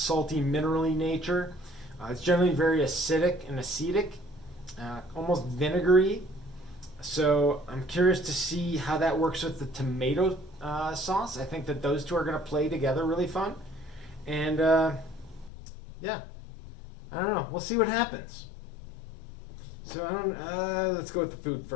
minerally nature. It's generally very acidic and acetic, almost vinegary. So I'm curious to see how that works with the tomato sauce. I think that those two are going to play together really fun. And yeah, I don't know. We'll see what happens. So let's go with the food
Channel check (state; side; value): drops out; right; at 15.5 s